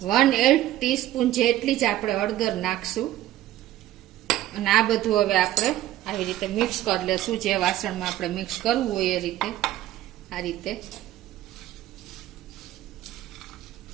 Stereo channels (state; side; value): quieter; left; 14.1 dB